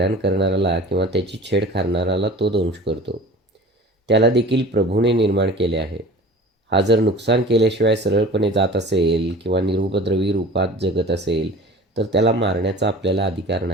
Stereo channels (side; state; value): both; normal; correlation 0.41